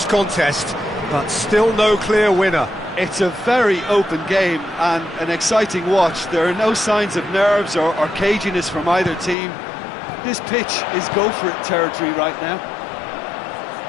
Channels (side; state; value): right; drops out; at 9.3 s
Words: contest, but still no clear winner. It's a very open game and an exciting watch. There are no signs of nerves or caginess from either team. This pitch is go-for-it territory right now.